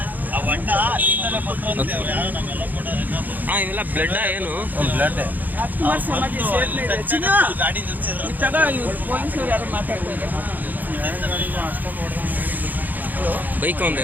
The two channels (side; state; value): left; late; 0.084 ms